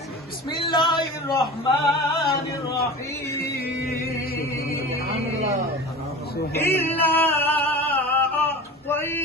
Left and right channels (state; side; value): normal; both; correlation 0.34